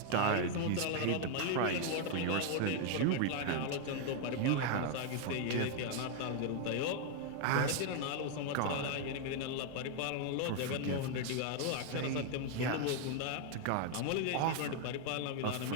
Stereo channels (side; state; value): both; different; correlation 0.00